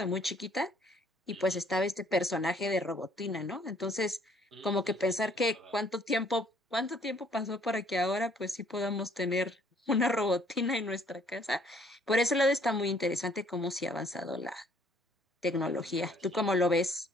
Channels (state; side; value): normal; both; correlation 0.62